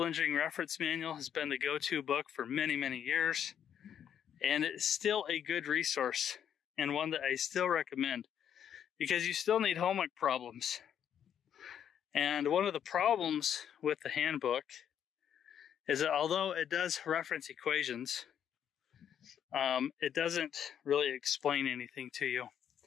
Engineering Reference Manual has been the go-to book for many, many years. And it's still a good resource and one that I still recommend, because you still need homework problems. And one of the problems with the handbook is that although it does reference equations, it doesn't really explain anything to you.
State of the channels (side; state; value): right; quieter; 9.1 dB